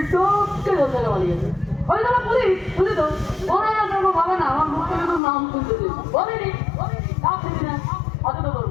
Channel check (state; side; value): drops out; right; at 5.2 s